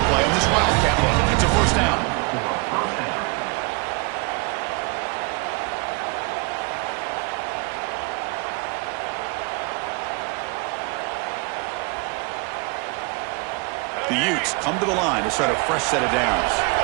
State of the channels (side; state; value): left; quieter; 28.6 dB